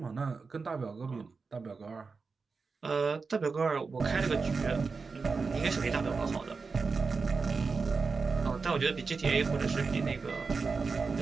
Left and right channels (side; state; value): left; quieter; 4.6 dB